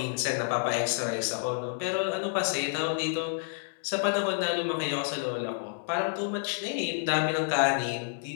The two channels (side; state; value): right; silent; digital silence